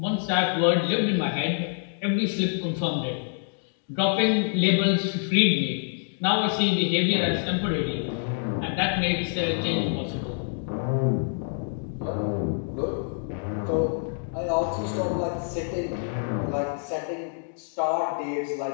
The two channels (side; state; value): right; silent; digital silence